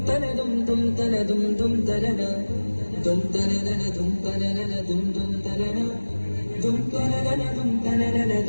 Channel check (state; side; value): inverted; both; correlation -1.00